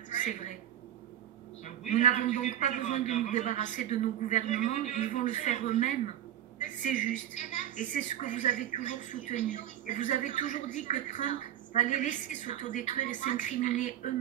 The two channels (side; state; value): left; quieter; 11.5 dB